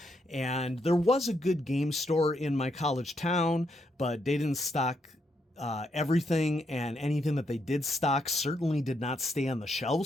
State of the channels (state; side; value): normal; both; correlation 0.78